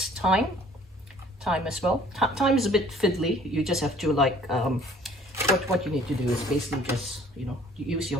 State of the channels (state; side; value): normal; both; correlation 0.55